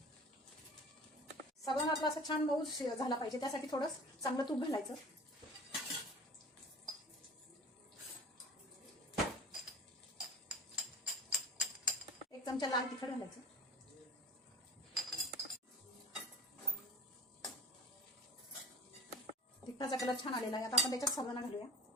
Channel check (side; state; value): both; normal; correlation 0.38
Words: साबुदाणा आपला असा छान मऊ झाला पाहिजे, त्यासाठी थोडं चांगलं तूप घालायचं। एक चमचा लाल तिखट घालायचं। तिखटाचा कलर छान आलेला आहे। आता आपण त्याच्यात साबुदाणा घालूया।